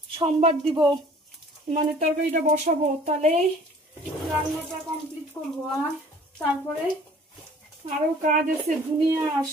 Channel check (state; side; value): normal; both; correlation 0.51